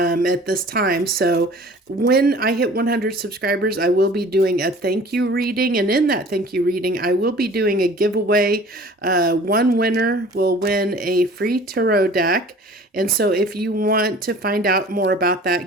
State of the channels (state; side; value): normal; both; correlation 0.46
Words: this time. So when I hit 100 subscribers, I will be doing a thank you reading. And in that thank you reading, I will be doing a giveaway. One winner will win a free tarot deck. And so if you want to find out more about